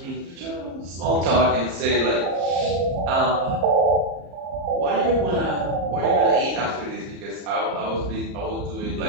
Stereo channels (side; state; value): left; late; 34 ms